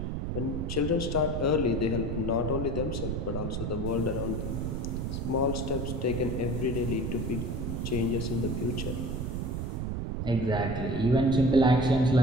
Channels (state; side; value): noise; right; rumble, 2 dB below the sound